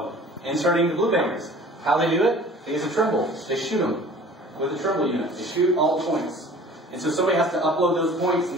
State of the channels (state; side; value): normal; both; correlation 0.46